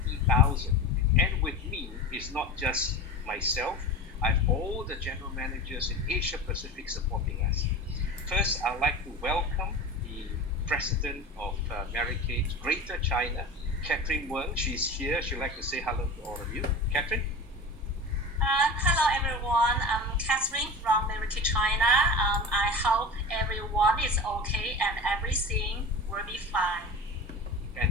And with me is not just myself, I have all the general managers in Asia Pacific supporting us. First, I'd like to welcome the president of Mary Kate Greater China, Catherine Weng. She's here. She'd like to say hello to all of you. Catherine? Hello everyone, I'm Catherine from Mr KK China. I hope everyone is okay and everything will be fine.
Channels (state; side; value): normal; both; correlation 0.30